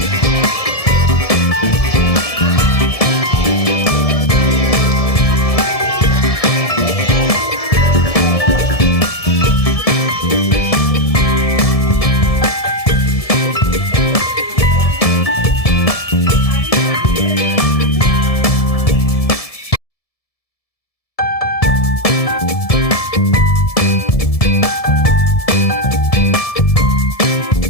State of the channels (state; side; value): late; right; 1.7 ms